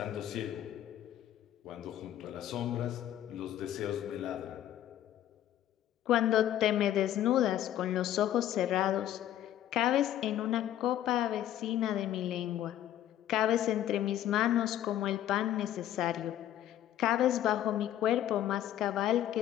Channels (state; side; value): quieter; right; 12.0 dB